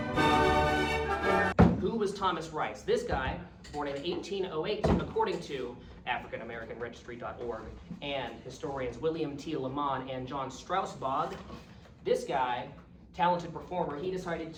Who was Thomas Rice? This guy, born in 1808, according to AfricanAmericanRegistry.org and historians William T. Lamont and John Strausbog. This guy, talented performer, he decided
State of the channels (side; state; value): both; identical; correlation 1.00